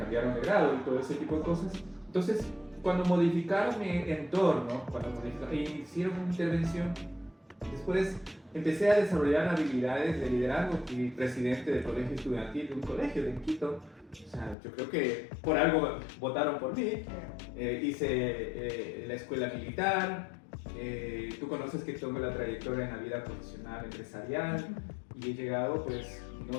de grado y todo ese tipo de cosas. Entonces, cuando modificaron mi entorno, hicieron una intervención, después empecé a desarrollar habilidades de liderazgo. Fui presidente del colegio estudiantil de un colegio de Quito. O sea, yo creo que por algo votaron por mí. Hice la escuela militar. Tú conoces que tengo la trayectoria en la vida profesional, empresarial, y he llegado, pues,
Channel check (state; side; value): drops out; right; at 14.6 s